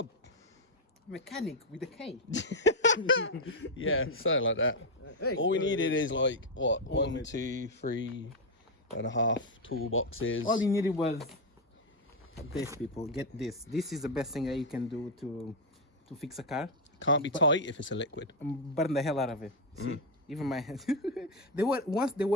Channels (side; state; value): both; normal; correlation 0.03